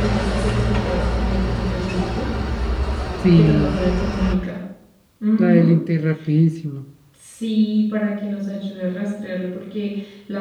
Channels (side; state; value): both; identical; correlation 1.00